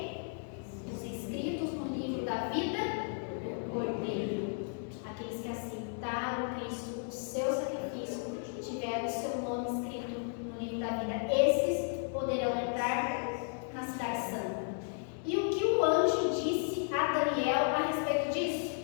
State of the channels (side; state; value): right; silent; 55 dB below the other